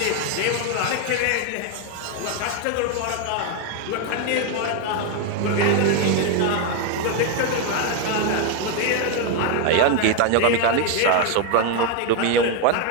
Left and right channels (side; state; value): both; different; correlation 0.01